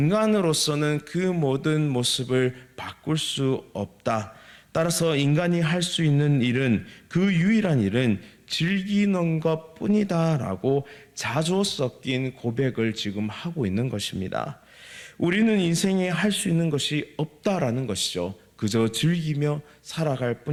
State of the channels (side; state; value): both; identical; correlation 1.00